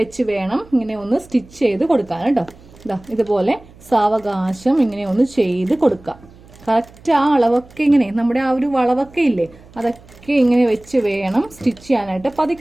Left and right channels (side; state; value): right; noise; hum, 24 dB below the sound